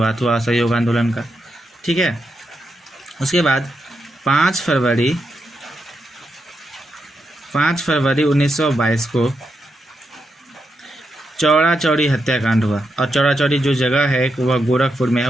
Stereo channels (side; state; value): both; normal; correlation 0.84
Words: हुआ असहयोग आंदोलन का, ठीक है। उसके बाद 5 फरवरी 1922 को चौड़ा चौड़ी हत्याकांड हुआ। और चौड़ा चौड़ी जो जगह है वह गोरखपुर में